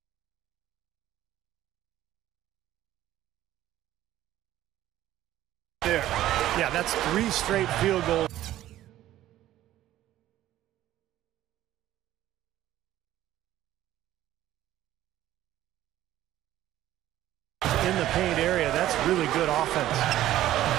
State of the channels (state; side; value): quieter; left; 13.8 dB